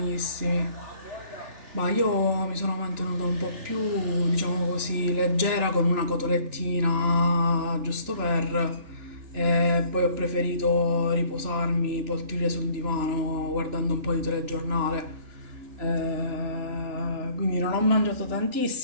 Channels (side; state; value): left; late; 3.4 ms